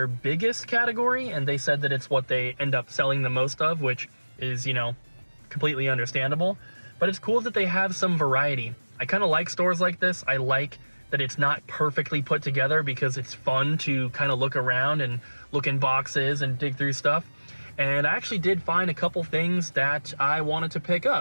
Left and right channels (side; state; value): both; inverted; correlation -1.00